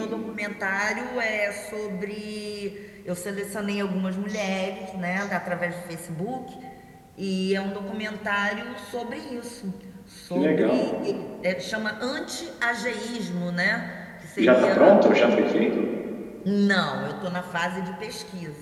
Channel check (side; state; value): both; identical; correlation 1.00